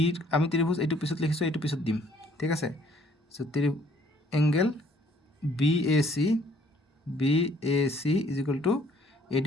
আমি ত্ৰিভুজ এইটো পিছত লিখিছোঁ, এইটো পিছত দিম। ঠিক আছে, চ' angle BAC is equal to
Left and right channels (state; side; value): normal; both; correlation 0.61